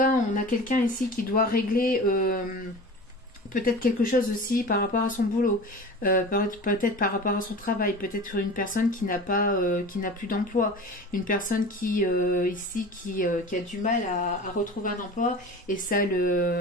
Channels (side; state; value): both; normal; correlation 0.35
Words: on a quelqu'un ici qui doit régler peut-être quelque chose aussi par rapport à son boulot, peut-être par rapport à son travail, peut-être une personne qui n'a plus d'emploi, une personne qui ici qui a du mal à retrouver un emploi et ça